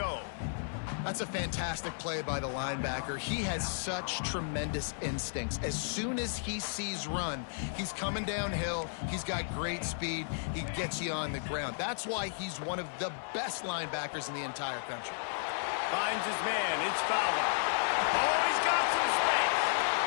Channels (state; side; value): silent; right; 55 dB below the other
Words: That's a fantastic play by the linebacker. He has such tremendous instincts. As soon as he sees run, he's coming downhill. He's got great speed. He gets you on the ground. That's why he's one of the best linebackers in the entire country. Finds his man. It's Fowler. Oh, he's got some space.